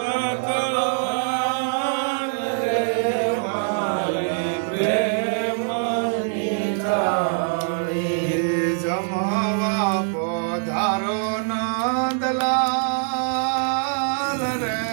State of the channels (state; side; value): silent; left; digital silence